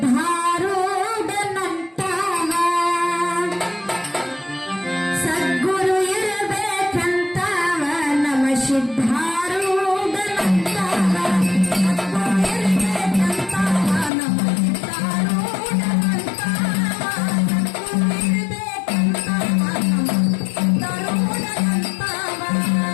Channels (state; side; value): drops out; right; at 14.1 s